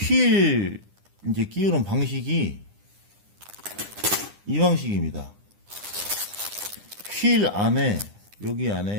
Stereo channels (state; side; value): late; left; 9.9 ms